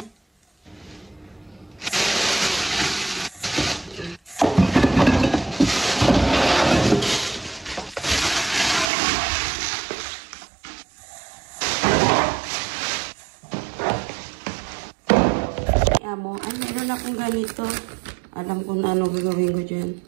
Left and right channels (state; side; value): drops out; left; at 8.9 s